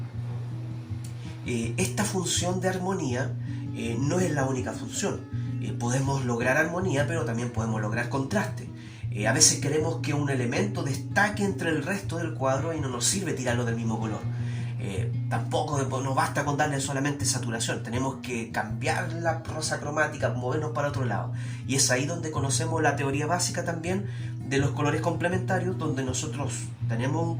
Esta función de armonía no es la única función. Podemos lograr armonía, pero también podemos lograr contraste. A veces queremos que un elemento destaque entre el resto del cuadro y no nos sirve tirarlo del mismo color. Tampoco no basta con darle solamente saturación, tenemos que cambiar la rosa cromática, movernos para otro lado. Y es ahí donde conocemos la teoría básica también de los colores complementarios, donde nosotros tenemos un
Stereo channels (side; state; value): both; identical; correlation 1.00